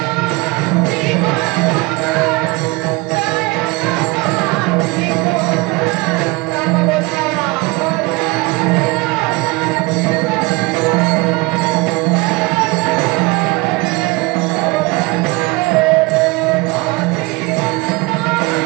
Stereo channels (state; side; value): quieter; left; 24.5 dB